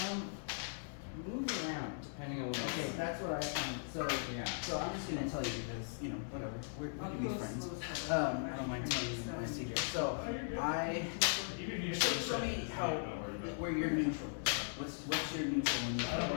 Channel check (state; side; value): silent; right; 52 dB below the other